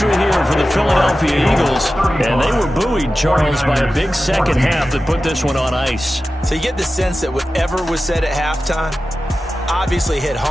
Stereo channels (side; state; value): both; normal; correlation 0.94